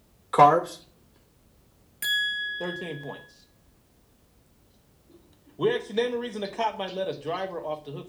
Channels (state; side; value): identical; both; correlation 1.00